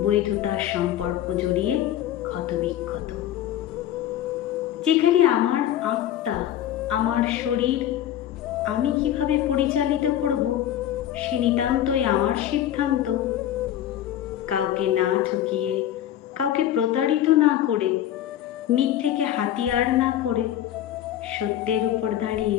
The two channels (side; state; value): right; quieter; 11.8 dB